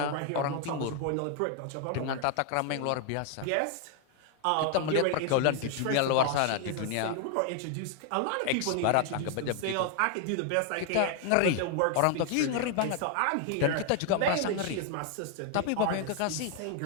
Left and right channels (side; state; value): both; different; correlation 0.00